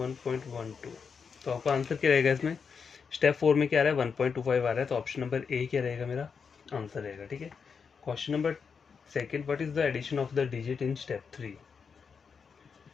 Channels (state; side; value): quieter; right; 5.9 dB